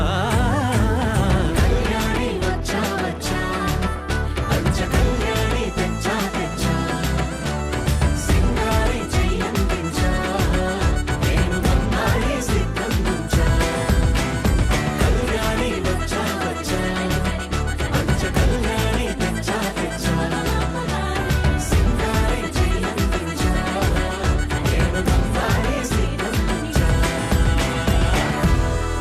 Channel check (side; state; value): both; identical; correlation 1.00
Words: కళ్యాణి వచ్చా వచ్చా పంచ కళ్యాణి తెచ్చా తెచ్చా సింగారి చెయ్యందించా నేను బంగారి సిద్ధందించా కళ్యాణి వచ్చా వచ్చా పంచ కళ్యాణి తెచ్చా తెచ్చా సింగారి చెయ్యందించా నేను బంగారి సిద్ధందించా